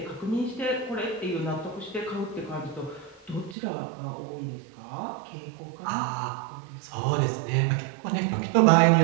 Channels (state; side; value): drops out; left; at 3.6 s